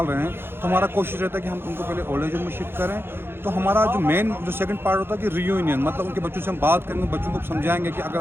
हैं, तो हमारा कोशिश रहता है कि हम उनको पहले ओल्ड एज होम में शिफ्ट करें। तो हमारा जो मेन जो सेकंड पार्ट होता है कि रियूनियन, मतलब उनके बच्चों से हम बात करेंगे, बच्चों को समझाएंगे कि अगर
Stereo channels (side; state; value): left; late; 0.11 ms